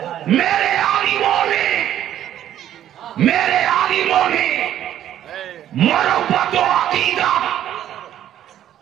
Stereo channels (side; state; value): left; quieter; 11.4 dB